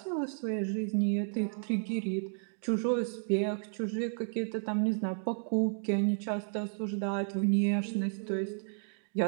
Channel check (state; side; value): silent; left; digital silence